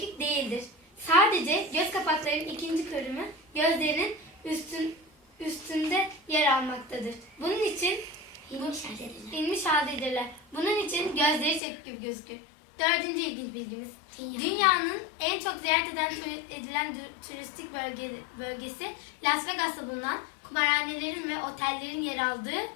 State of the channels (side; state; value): right; drops out; at 11.6 s